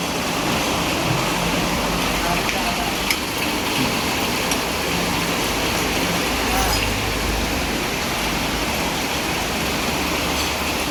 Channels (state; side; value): identical; both; correlation 1.00